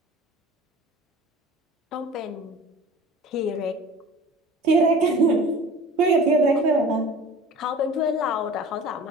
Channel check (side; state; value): both; normal; correlation 0.41